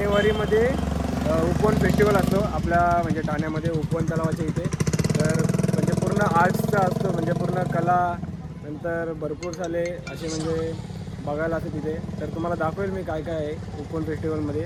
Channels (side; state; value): both; identical; correlation 1.00